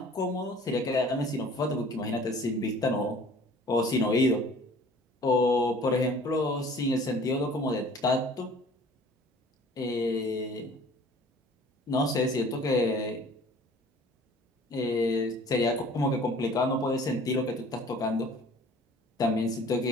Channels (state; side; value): normal; both; correlation 0.50